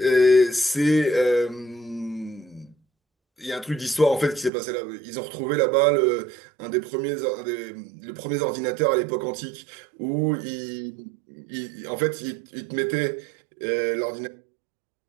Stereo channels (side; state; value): left; drops out; at 4.5 s